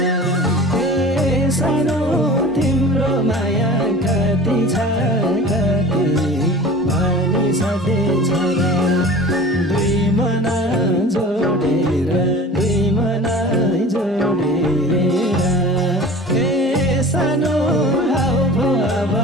सानो तिम्रो माया कति छ कति भनी सधैँ छोरा दुई मन जोडेर दुई मन जोडेर सानो अब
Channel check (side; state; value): both; normal; correlation 0.39